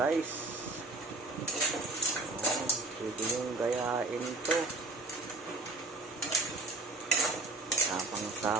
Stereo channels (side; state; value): left; quieter; 3.0 dB